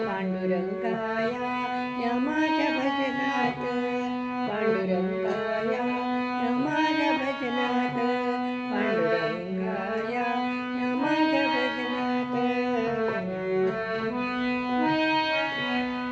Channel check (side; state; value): both; identical; correlation 1.00